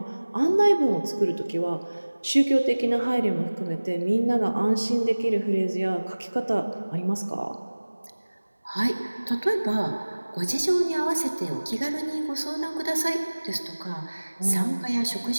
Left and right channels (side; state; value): both; inverted; correlation -1.00